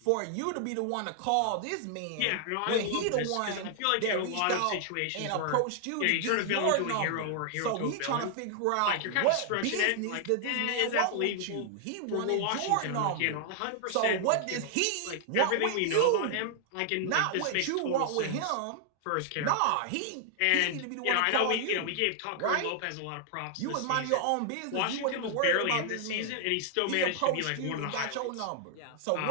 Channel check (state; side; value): different; both; correlation 0.00